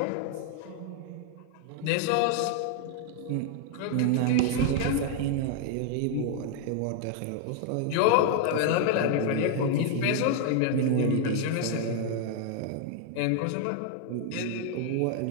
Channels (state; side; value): different; both; correlation 0.00